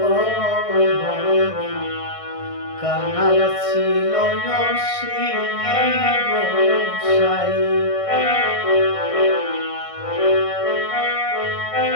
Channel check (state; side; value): late; right; 1.6 ms